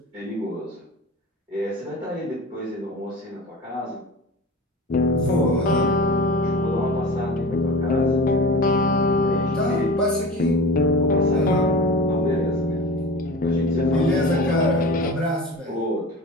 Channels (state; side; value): normal; both; correlation 0.33